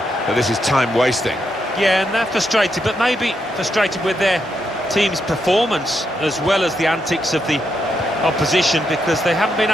that this is time wasting. Yeah, and they're frustrated, but maybe frustrated with their team's performance as well as the antics of the opposition, because they haven't been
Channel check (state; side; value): normal; both; correlation 0.81